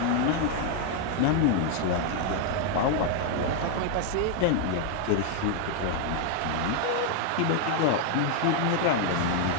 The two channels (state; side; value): different; both; correlation 0.00